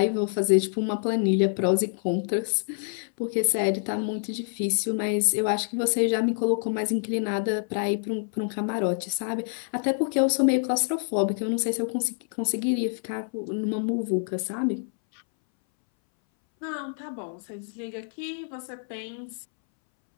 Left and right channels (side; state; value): right; silent; 60 dB below the other